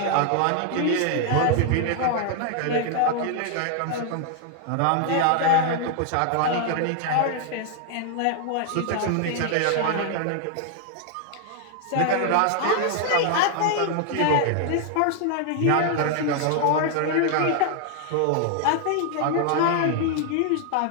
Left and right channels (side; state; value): both; different; correlation 0.00